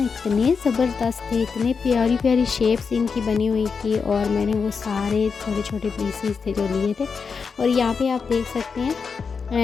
इतने ज़बरदस्त थे, इतने प्यारी प्यारी शेप्स इनकी बनी हुई थी। और मैंने वो सारे छोटे छोटे पीसीस थे जो लिए थे। और यहाँ पे आप देख सकते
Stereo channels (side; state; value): right; quieter; 5.5 dB